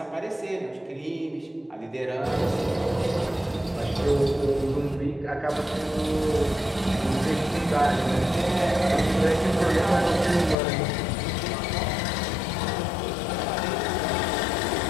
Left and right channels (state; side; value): drops out; right; at 10.6 s